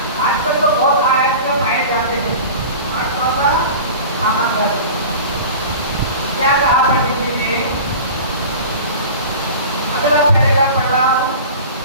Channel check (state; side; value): inverted; both; correlation -0.36